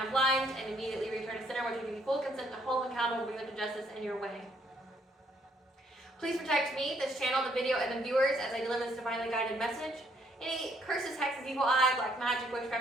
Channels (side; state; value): both; normal; correlation 0.69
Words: blind and immediately return to center, which will give you full consent to hold them accountable and bring them to justice in your way. Please protect me, this channel, the video, and the viewers as I deliver this divinely guided message. Any curses, hexes, evil eye, black magic,